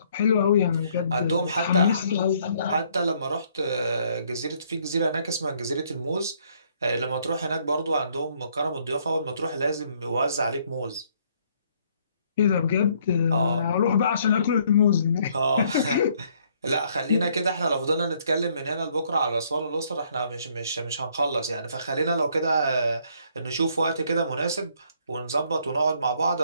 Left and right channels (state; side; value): inverted; both; correlation -0.66